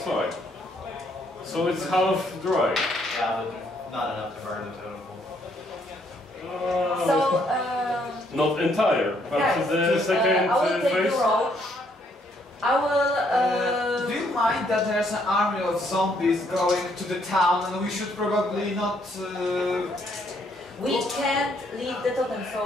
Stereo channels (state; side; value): normal; both; correlation 0.70